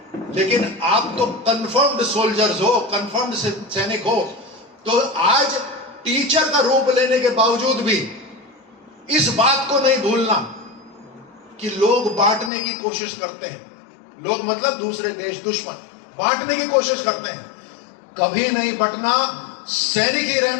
लेकिन आप तो कन्फर्म्ड सोल्जर्स हो, कन्फर्म्ड सैनिक हो। तो आज टीचर का रूप लेने के बावजूद भी इस बात को नहीं भूलना कि लोग बांटने की कोशिश करते हैं। लोग मतलब दूसरे देश, दुश्मन बांटने की कोशिश करते हैं। कभी नहीं बंटना, सैनिक ही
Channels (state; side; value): drops out; right; at 12.5 s